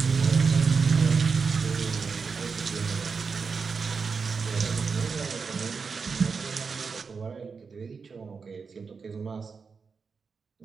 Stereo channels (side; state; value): left; quieter; 5.2 dB